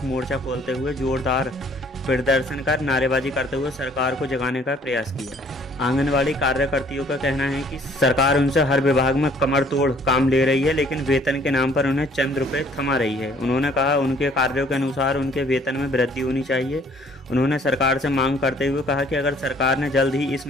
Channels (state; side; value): normal; both; correlation 0.59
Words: मोर्चा खोलते हुए जोरदार प्रदर्शन कर नारेबाजी करते हुए सरकार को जगाने का प्रयास किया। आंगनवाड़ी कार्यकर्तियों का कहना है कि सरकार उनसे हर विभाग में कमर तोड़ काम ले रही है, लेकिन वेतन के नाम पर उन्हें चंद रुपए थमा रही है। उन्होंने कहा उनके कार्यों के अनुसार उनके वेतन में वृद्धि होनी चाहिए। उन्होंने सरकार से मांग करते हुए कहा कि अगर सरकार ने जल्द ही इस